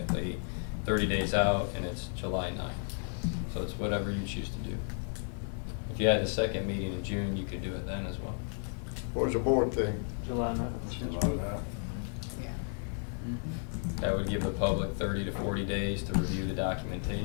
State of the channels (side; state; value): right; silent; 56 dB below the other